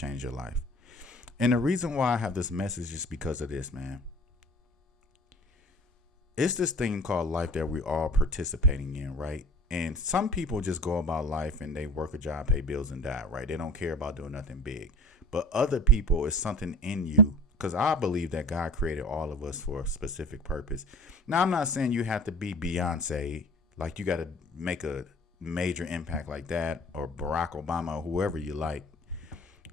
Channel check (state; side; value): normal; both; correlation 0.43